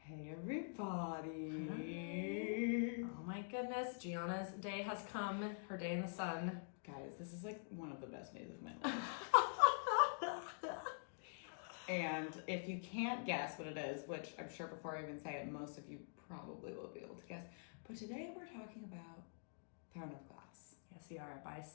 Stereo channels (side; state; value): right; silent; digital silence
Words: Hey everybody. Oh my goodness, Gianna's day has come. Her day in the sun. Guys, this is like one of the best days of my life. And if you can't guess what it is, which I'm sure before I even say it, most of you probably will be able to guess. But today we're talking about Throne of Glass. Yes, we are, by